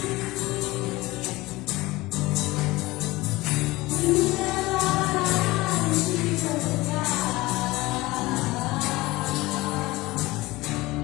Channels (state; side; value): quieter; right; 20.3 dB